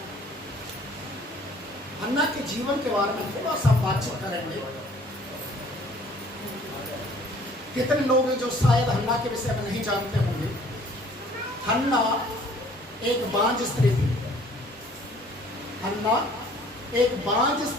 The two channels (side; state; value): both; normal; correlation 0.55